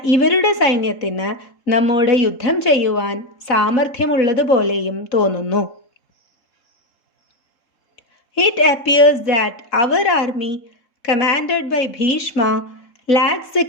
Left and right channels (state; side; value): late; right; 3.7 ms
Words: ഇവരുടെ സൈന്യത്തിന് നമ്മോട് യുദ്ധം ചെയ്യുവാൻ സാമർഥ്യമുള്ളതുപോലെയും തോന്നുന്നു. It appears that our army, commanded by Bhishma, lacks the